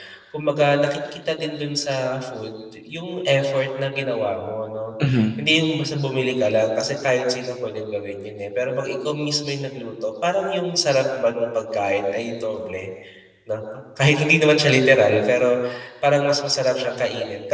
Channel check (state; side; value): identical; both; correlation 1.00